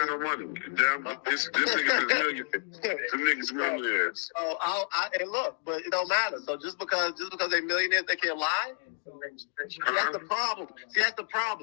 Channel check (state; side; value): silent; right; 58 dB below the other